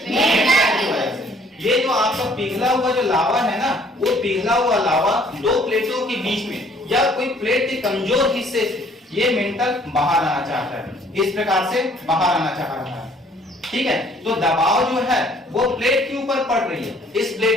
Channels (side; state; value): both; normal; correlation 0.59